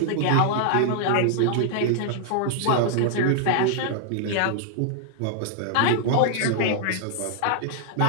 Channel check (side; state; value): both; different; correlation -0.01